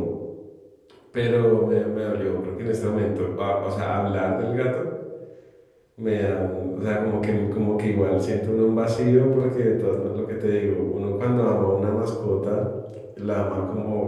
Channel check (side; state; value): both; identical; correlation 1.00